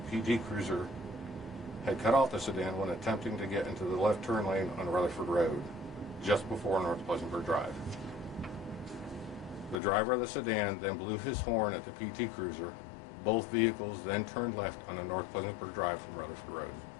PT Cruiser had cut off the sedan when attempting to get into the left turn lane on Rutherford Road, just before North Pleasantburg Drive. The driver of the sedan then blew his horn at the PT Cruiser. Both vehicles then turned left on the North Pleasantburg Drive from Rutherford Road.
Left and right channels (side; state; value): right; drops out; at 9.8 s